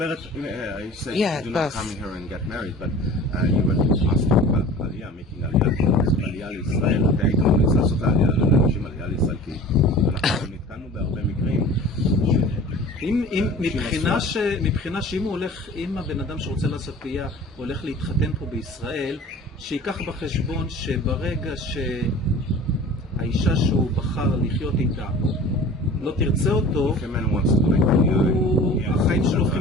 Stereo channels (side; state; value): both; normal; correlation 0.42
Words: said do not come here and get married, but you were asking about Aliyah, making Aliyah לישראל, אתה היית ממליץ לעשות Aliyah לאנשים Aliyah לישראל, כי אנחנו נתקענו בהרבה מקרים. מבחינה שאם הוא הולך, אם הבן אדם שרוצה לעשות Aliyah הולך להתחתן פה בישראל, שיקח בחשבון שברגע שהאישה שהוא בחר לחיות איתה לא תרצה אותו, החיים שלו